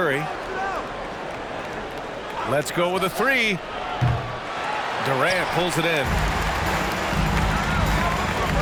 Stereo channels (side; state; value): both; identical; correlation 1.00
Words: Let's go with a three. Durant pulls it in.